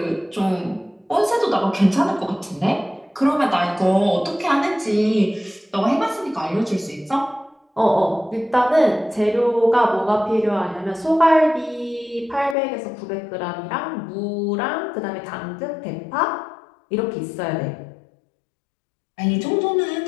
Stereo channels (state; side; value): drops out; right; at 12.6 s